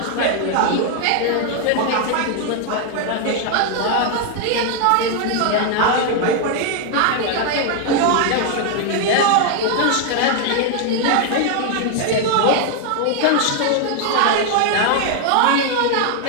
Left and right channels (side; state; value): both; different; correlation 0.00